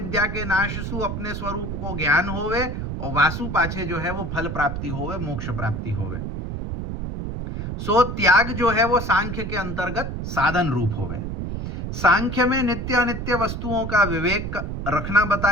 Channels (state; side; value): noise; right; rumble, 5 dB below the sound